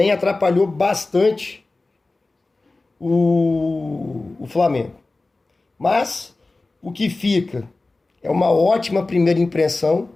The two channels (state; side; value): quieter; right; 3.3 dB